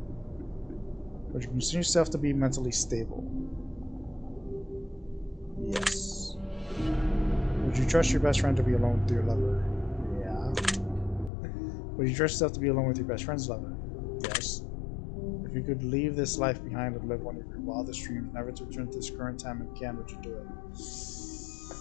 Would you consider yourself to be mentally stable? Yes. Would you trust your best friend to be alone with your lover? Yeah. Would you trust yourself to be alone with your best friend's lover? Yes. If you could leave this life behind and live one of your wildest dreams, never to return to this current time again, would you do it?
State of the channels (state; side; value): drops out; right; at 11.3 s